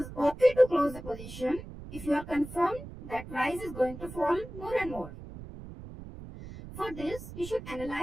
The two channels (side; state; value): right; noise; rumble, 13 dB below the sound